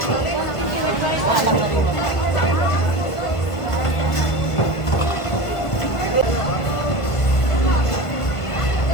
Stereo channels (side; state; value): right; late; 1.5 ms